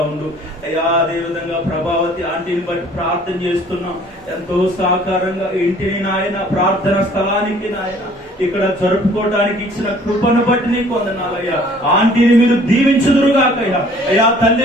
ఉండు అయ్యా. అదే విధంగా ప్రభావతి ఆంటీని బట్టి ప్రార్థన చేస్తున్నాం. ఎంతో సహకారంగా ఇంటిని నాయన ప్రార్థన స్థలానికి నాయన ఇక్కడ జరుపుకోవడానికి ఇచ్చిన కృపను బట్టి నీకు వందనాలయ్యా. ఆంటీని మీరు దీవించుదురుగాకయ్యా. అయ్యా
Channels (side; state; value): both; normal; correlation 0.55